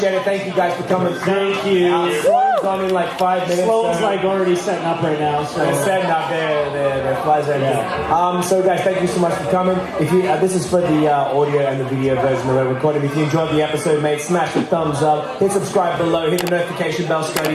it. Thank you guys for coming. Thank you. Sloan's on in like 5 minutes. Sloan's like already setting up right now. So. They're setting up their flies right now. So guys, thank you so much for coming. If you, this is for the audio and the video version of the recording. If you enjoyed the episode, mate, smash the thumbs up. Hit subscribe below. Hit the notification bell,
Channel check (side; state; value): both; identical; correlation 1.00